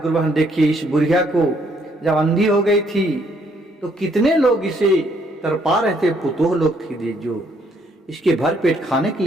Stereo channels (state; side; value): normal; both; correlation 0.69